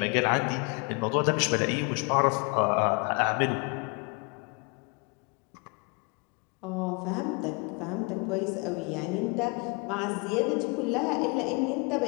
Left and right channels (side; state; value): right; quieter; 31.5 dB